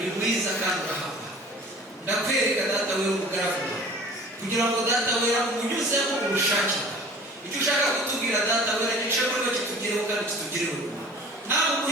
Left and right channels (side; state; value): both; normal; correlation 0.45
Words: mwiza kandi urahaba. Ndakwereka data wera umugaragu kugira ngo data wera umunyuzemo ubushake icyo ushaka kutubwira data wera gishobora kuba kitugereho kandi kitugereho. Nawe